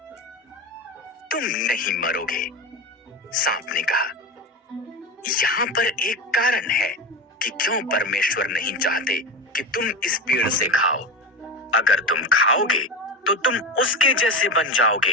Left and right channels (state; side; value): normal; both; correlation 0.22